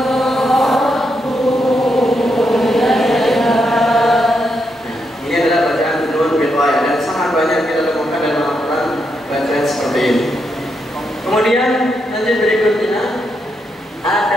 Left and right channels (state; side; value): normal; both; correlation 0.81